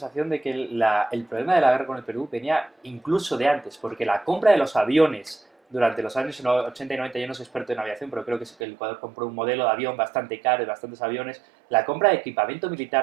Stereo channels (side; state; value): left; drops out; at 8.6 s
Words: de que el problema de la guerra con el Perú venía incluso de antes, porque la compra de los aviones durante los años 80 y 90, yo no soy experto en aviación, pero creo que el Ecuador compró un modelo de avión bastante caro y bastantes aviones. La compra de equipamiento